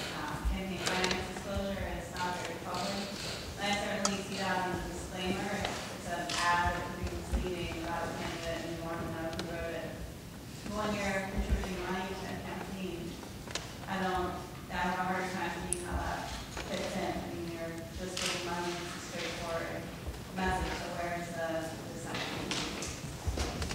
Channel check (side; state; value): both; identical; correlation 1.00